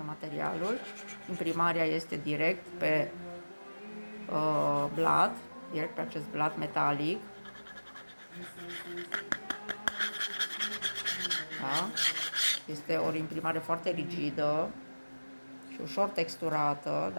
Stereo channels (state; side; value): inverted; both; correlation -1.00